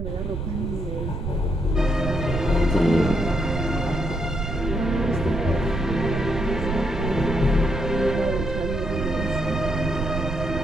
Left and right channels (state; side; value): noise; right; rumble, 4 dB below the sound